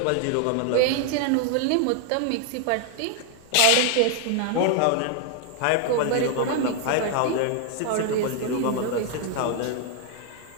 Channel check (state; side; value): different; both; correlation 0.00